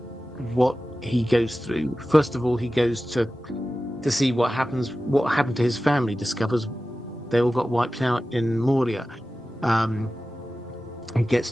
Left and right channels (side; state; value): both; normal; correlation 0.95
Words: what he goes through, first of all, he goes to see what happened to his family, discovers they all got wiped out in Moria. He gets